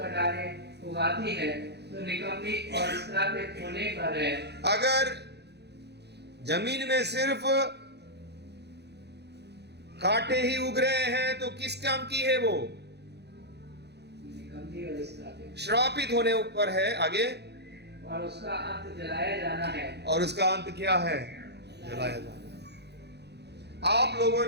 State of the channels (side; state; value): left; late; 0.49 ms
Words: उगाती है तो निकम्मी और श्रापित होने पर है। अगर जमीन में सिर्फ कांटे ही उग रहे हैं तो किस काम की है वो? निकम्मी और श्रापित होने ऊपर है। आगे, और उसका अंत जलाया जाना है। और उसका अंत क्या है? जलाया जाना। आप लोगों